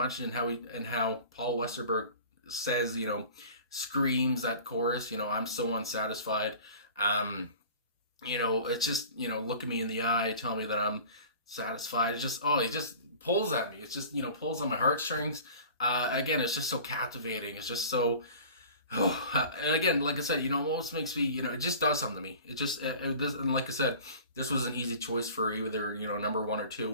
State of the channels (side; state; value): both; inverted; correlation -0.42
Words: in how Paul Westerberg says, you know, screams that chorus, you know, I'm so unsatisfied. You know, it's just, you know, look at me in the eye, tell me that I'm satisfied. It just, it just pulls at me. It's just, you know, pulls on my heartstrings. Again, it's just so captivating. It's just so, and again, like I said, you know, it almost makes me, you know, it just does something to me. It just, and like I said, this was an easy choice for either, you know, number 1 or